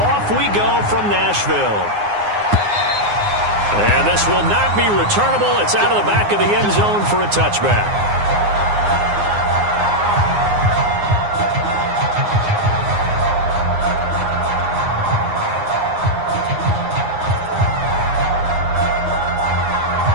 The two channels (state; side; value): late; left; 9.6 ms